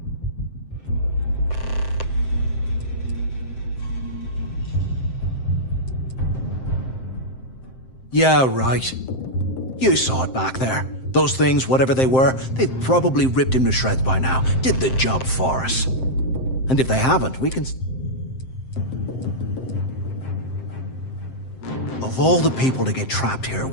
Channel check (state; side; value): late; right; 7.7 ms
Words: Yeah, right. You saw it back there. Those things, whatever they were, they've probably ripped him to shreds by now. Did the job for us. And if they haven't, we can... Of all the people to get trapped here